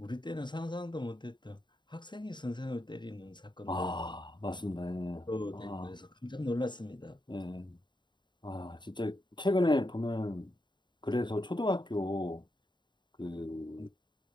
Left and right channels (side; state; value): right; late; 0.22 ms